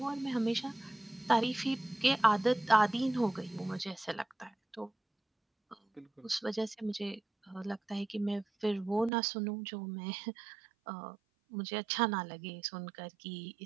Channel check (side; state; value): left; drops out; at 9.1 s